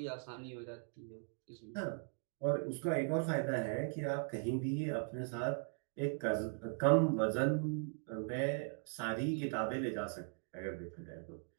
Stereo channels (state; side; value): silent; left; 52 dB below the other